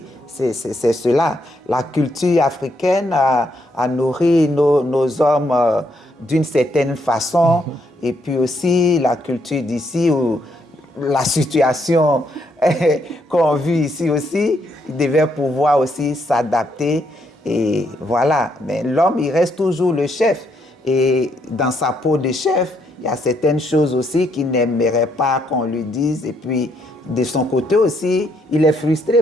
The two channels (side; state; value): both; normal; correlation 0.74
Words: c'est cela. La culture africaine a nourri nos hommes d'une certaine façon, et puis aussi la culture d'ici, où la situation qu'on vit ici aussi, il devait pouvoir aussi s'adapter. Et voilà, mais l'homme, il reste toujours le chef. Et dans sa peau de chef, il y a certaines choses aussi qu'il n'aimerait pas qu'on lui dise. Et puis, de son côté aussi, il est